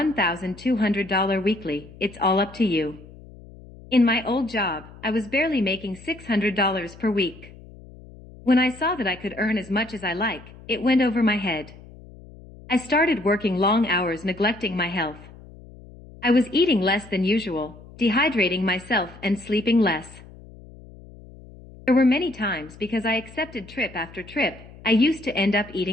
weekly, it's all up to you. In my old job, I was barely making $600 per week. When I saw that I could earn as much as I like, it went over my head. I started working long hours neglecting my health. I was eating less than usual, dehydrating myself and sleeping less. There were many times because I accepted trip after trip, I used to end up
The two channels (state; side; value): noise; left; hum, 19 dB below the sound